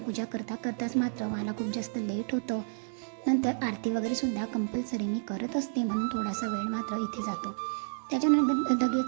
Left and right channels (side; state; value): left; silent; digital silence